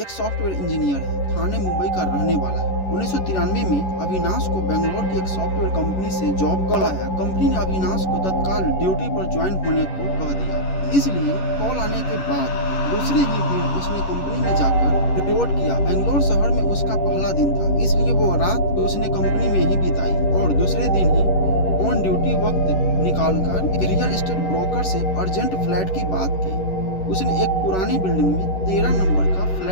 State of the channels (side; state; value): right; late; 11 ms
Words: सॉफ्टवेयर इंजीनियर है, थाने मुंबई का रहने वाला है। 1993 में अविनाश को बेंगलोर की एक सॉफ्टवेयर कंपनी से जॉब कॉल आया। कंपनी ने अविनाश को तत्काल ड्यूटी पर ज्वाइन होने को कह दिया। इसलिए कॉल आने के बाद दूसरे ही दिन उसने कंपनी में जाकर रिपोर्ट किया। बेंगलोर शहर में उसका पहला दिन था, इसलिए वो रात उसने कंपनी में ही बिताई और दूसरे दिन ही ऑन ड्यूटी वक्त निकालकर रियल एस्टेट ब्रोकर से अर्जेंट फ्लैट की बात की। उसने एक पुरानी बिल्डिंग में 13 नंबर का